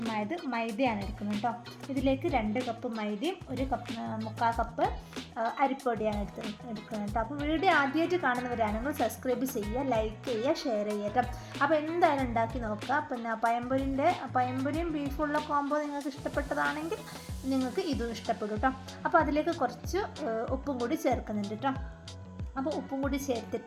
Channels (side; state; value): both; identical; correlation 1.00